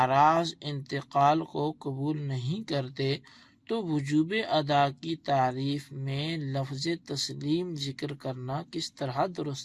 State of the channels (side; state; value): both; identical; correlation 1.00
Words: انتقال کو قبول نہیں کرتے، تو وجوب ادا کی تعریف میں لفظ تسلیم ذکر کرنا کس طرح